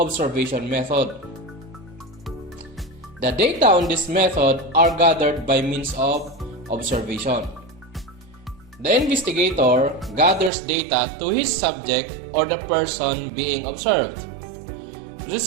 method. The data on this method are gathered by means of observation. The investigator gathers data to his subject or the person being observed.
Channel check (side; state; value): left; drops out; at 10.5 s